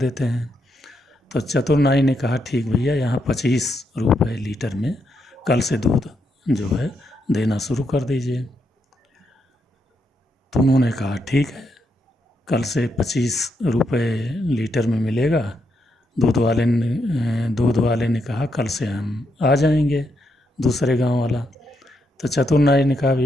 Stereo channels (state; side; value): normal; both; correlation 0.80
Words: हैं। तो चतुर नाई ने कहा ठीक भैया, यहाँ 25 रुपये लीटर में कल से दूध जो है देना शुरू कर दीजिए। तो उन्होंने कहा ठीक है, कल से 25 रुपये लीटर में मिलेगा। दूध वाले ने कहा कल से हम आ जाएंगे, दूसरे गांव वाला। तो चतुर नाई ने कहा